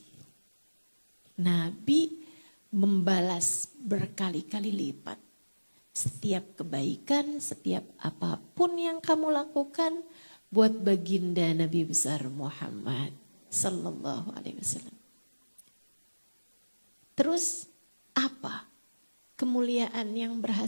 Nabi membalas berkali-kali lipat. Setiap kebaikan, setiap apapun yang kamu lakukan buat baginda Nabi besar Muhammad sallallahu alaihi wasallam. Terus apa kemuliaan yang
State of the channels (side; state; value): both; inverted; correlation -1.00